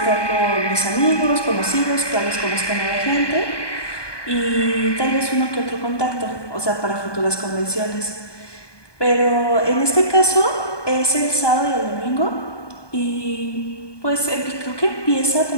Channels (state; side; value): late; right; 1.2 ms